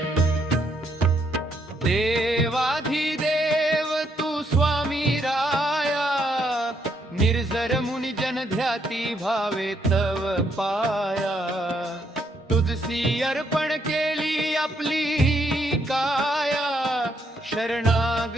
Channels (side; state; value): both; normal; correlation 0.74